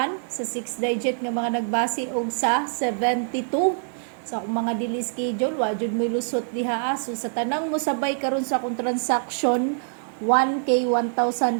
sa 6 digit nga mga nagbase og sa 72. Sa akong mga dili schedule, wa jud mo lusot diha. So sa tanang mo sabay karon sa akong transaction 1K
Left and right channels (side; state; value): left; silent; digital silence